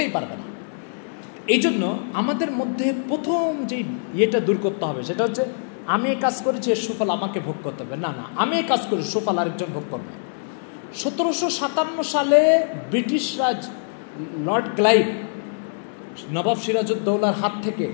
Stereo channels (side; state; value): right; silent; digital silence